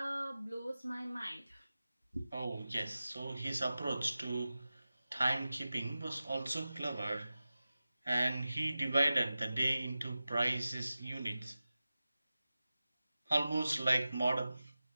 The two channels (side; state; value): both; inverted; correlation -0.95